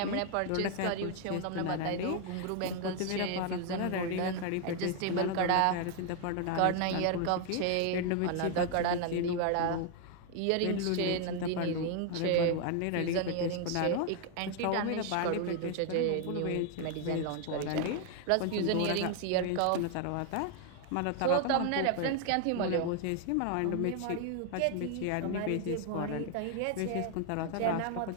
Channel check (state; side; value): different; both; correlation 0.00